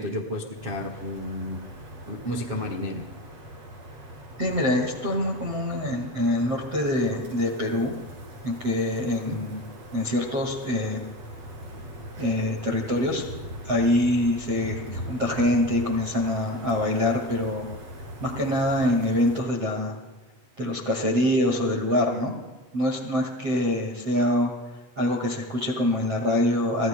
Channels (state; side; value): late; left; 7.6 ms